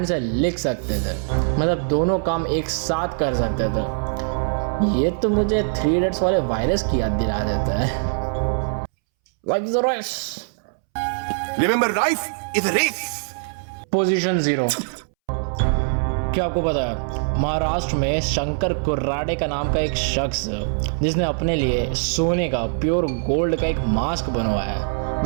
से लिख सकते थे, मतलब दोनों काम एक साथ कर सकते थे। ये तो मुझे 3 इडियट्स वाले वायरस की याद दिला देता है। Like the race. Remember, life is a race. Position 0। क्या आपको पता है महाराष्ट्र में शंकर कुर्राडे का नाम का एक शख्स जिसने अपने लिए सोने का प्योर गोल्ड का एक मास्क बनवाया है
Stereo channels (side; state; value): left; silent; 64 dB below the other